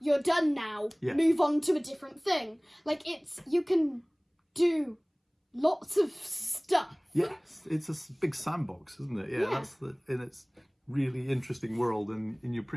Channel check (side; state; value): both; identical; correlation 1.00